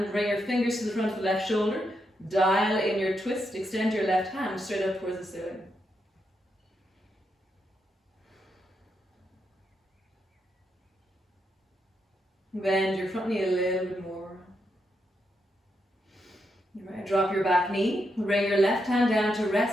bring your fingers to the front of the left shoulder. Dial in your twist, extend your left hand straight up towards the ceiling. Bend your front knee a little bit more. Right, drop your back knee. Bring your left hand down to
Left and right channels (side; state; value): both; normal; correlation 0.82